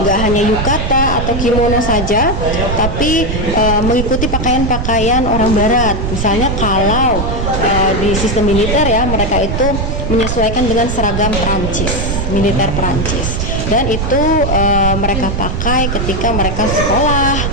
nggak hanya yukata atau kimono saja, tapi mengikuti pakaian-pakaian orang Barat. Misalnya kalau di sistem militer ya, mereka itu menyesuaikan dengan seragam Prancis, militer Prancis. Dan itu mereka pakai ketika mereka sekolah,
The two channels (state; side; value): noise; right; rumble, 2 dB below the sound